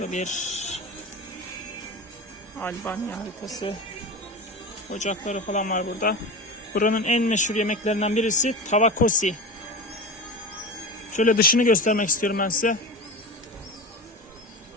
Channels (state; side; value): normal; both; correlation 0.27